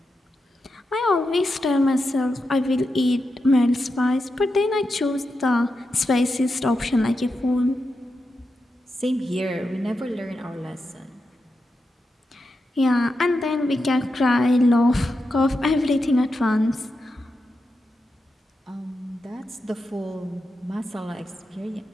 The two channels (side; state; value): both; normal; correlation 0.88